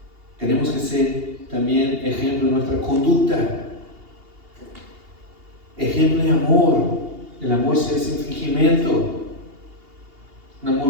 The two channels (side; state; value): left; late; 2.8 ms